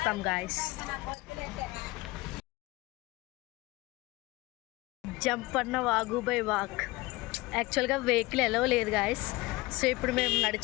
గాయస్. జంపన్న వాగు బై వాక్. యాక్చువల్గా వెహికల్ ఎలా లేదు గాయస్. సో ఇప్పుడు మేము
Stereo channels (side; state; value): right; quieter; 21.4 dB